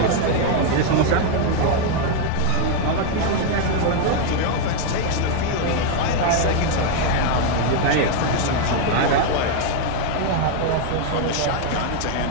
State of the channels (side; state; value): both; different; correlation 0.01